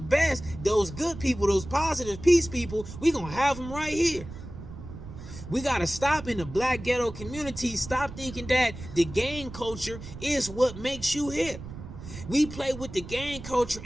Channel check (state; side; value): noise; right; rumble, 12 dB below the sound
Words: those good people, those positive peace people. We gonna have them right here. We got to stop in the black ghetto community. Stop thinking that the gang culture is what makes you hip. We play with the gang culture